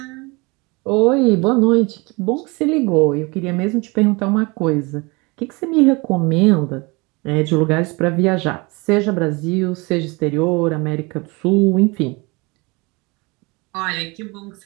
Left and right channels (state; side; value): quieter; left; 26.6 dB